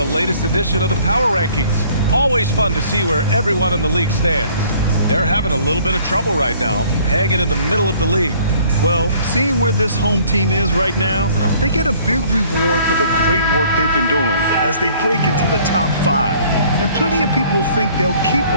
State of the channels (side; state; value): both; inverted; correlation -0.56